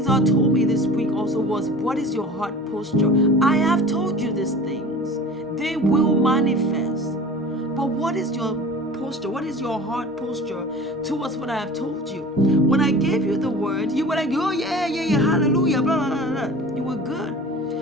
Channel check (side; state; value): both; normal; correlation 0.39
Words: God told me this week also was, what is your heart posture? I have told you these things. They will manifest. But what is your posture? What is your heart posture towards what I have told you? When I gave you the word, you were like, oh yeah, hallelujah, blah, blah, blah, blah. You were good.